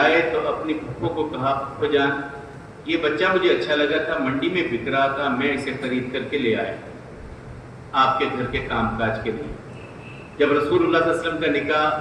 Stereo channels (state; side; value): identical; both; correlation 1.00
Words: تو اپنی پھپھو کو کہا، پھپھو جان یہ بچہ مجھے اچھا لگا تھا، منڈی میں بک رہا تھا، میں اسے خرید کر کے لے آیا آپ کے گھر کے کام کاج کے لیے۔ جب رسول اللہ صلی اللہ علیہ وسلم کا نکاح